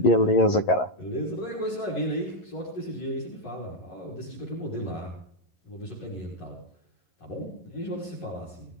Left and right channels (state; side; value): late; right; 11 ms